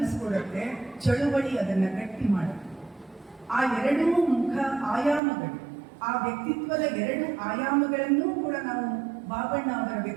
ಚಳುವಳಿ, ಅದನ್ನ ಗಟ್ಟಿ ಮಾಡುತ್ತೆ. ಆ ಎರಡೂ ಮುಖ ಆಯಾಮಗಳು, ಆ ವ್ಯಕ್ತಿತ್ವದ ಎರಡು ಆಯಾಮಗಳನ್ನೂ ಕೂಡ ನಾವು ಬಾಬಣ್ಣ ಅವರ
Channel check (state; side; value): drops out; left; at 5.2 s